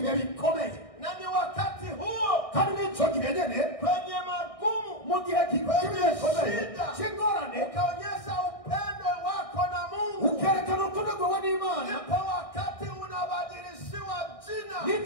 bikomeye, na ni wakati huo kandi nico gihe nyene kwenye magumu, mu gihe kikomeye cy'ingorane ukaonyesha upendo wako na Mungu, ukerekana urukundo rwawe n'Imana, ndipo wakati unabadilishiwa jina,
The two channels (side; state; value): right; late; 1.6 ms